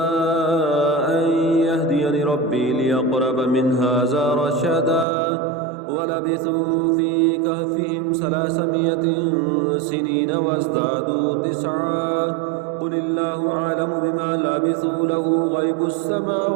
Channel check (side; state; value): left; drops out; at 5.1 s